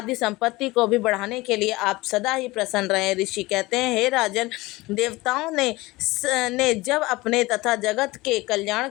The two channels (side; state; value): right; quieter; 20.7 dB